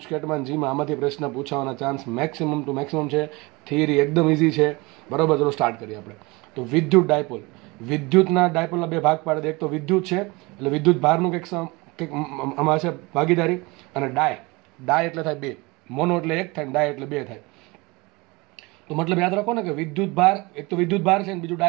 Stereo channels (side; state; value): left; quieter; 24.8 dB